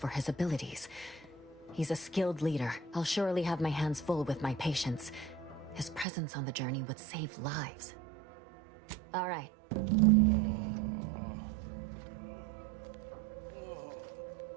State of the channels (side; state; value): left; drops out; at 6.1 s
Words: his abilities. He's a skilled leader. I'll surely have my hands full with my patients. His presence on the journey would save lives. All right.